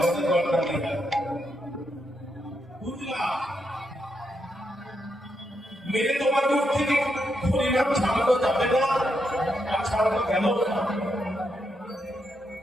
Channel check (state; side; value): normal; both; correlation 0.81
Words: গলা দিয়ে বুঝলাম। মেরে তোমার মুখ থেকে হরিনাম ছাড়ানো যাবে না, আর ছাড়ানো গেল না।